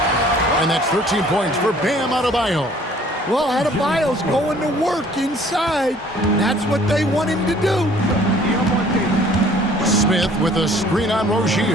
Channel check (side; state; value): both; normal; correlation 0.55